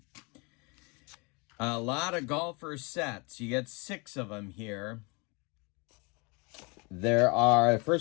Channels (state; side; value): quieter; right; 29.0 dB